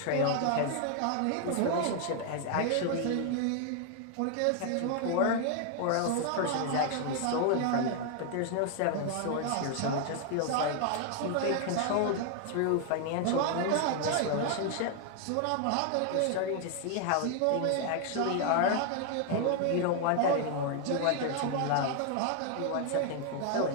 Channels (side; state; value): both; different; correlation 0.00